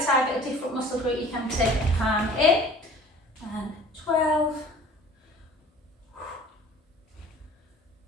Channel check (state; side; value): normal; both; correlation 0.47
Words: target a different muscle group, you can take the palm in. And 12.